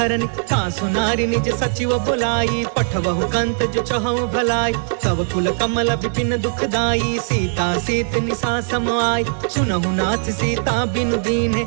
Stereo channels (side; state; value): left; silent; digital silence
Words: तासु नारी निज सचिव बुलाई, पठवहु कंत जो चहु भलाई। तब कुल कमल विपिन दुखदाई, सीता सीत निशा सम आई। सुनहु नाथ सीता बिनु दीन्हे,